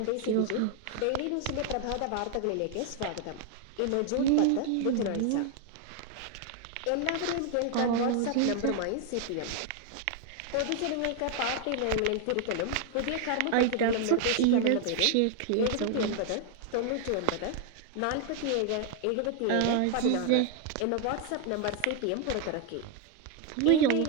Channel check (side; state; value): both; different; correlation 0.00